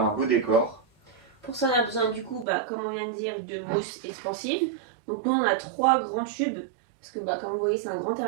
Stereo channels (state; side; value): drops out; left; at 2.5 s